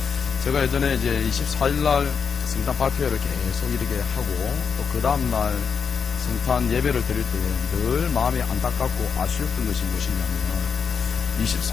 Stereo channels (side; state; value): right; quieter; 6.3 dB